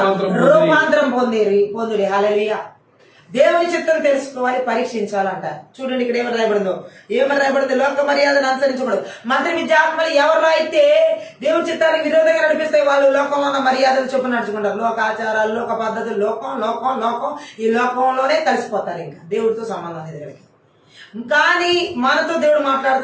రూపాంతరం పొందుడి. హల్లెలూయా. దేవుని చిత్తం తెలుసుకోవాలి, పరీక్షించాలంట. చూడండి ఇక్కడ ఏమని రాయబడింది? లోక మర్యాదను అనుసరించకూడదు. మంత్రి విద్యాత్మలు ఎవరు అయితే దేవుని చిత్తానికి విరోధంగా నడిపిస్తాయి వాళ్ళు లోకంలో ఉన్న మర్యాదలు చొప్పున నడుచుకుంటారు. లోక ఆచారాలు, లోక పద్ధతులు, లోకం ఈ లోకంలోనే కలిసిపోతారు. ఇంకా దేవుడితో సంబంధం అనేది. కానీ మనతో దేవుడు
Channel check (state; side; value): identical; both; correlation 1.00